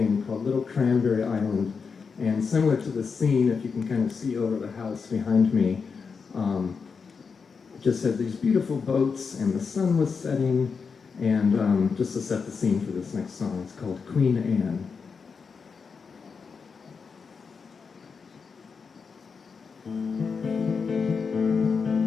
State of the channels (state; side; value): quieter; right; 5.4 dB